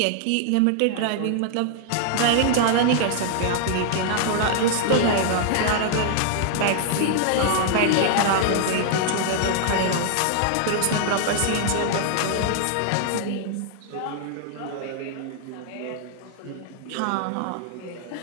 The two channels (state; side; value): different; both; correlation 0.00